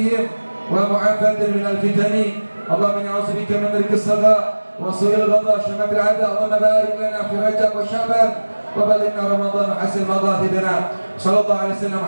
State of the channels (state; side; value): inverted; both; correlation -1.00